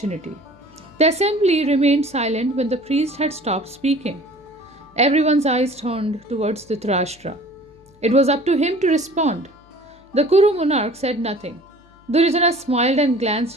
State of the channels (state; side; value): noise; left; hum, 29 dB below the sound